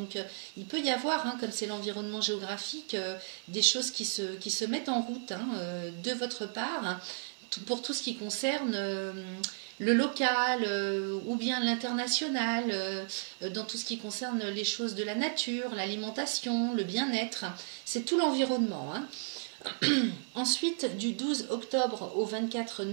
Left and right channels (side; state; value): left; silent; digital silence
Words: il peut y avoir, hein, comme c'est l'environnement géographique, des choses qui se mettent en route, hein, de votre part, hein, pour tout ce qui concerne le local ou bien l'international, dans tout ce qui concerne les choses de la nature, l'alimentation, le bien-être, c'est tout l'environnement, hein. Ensuite, du 12 octobre au 24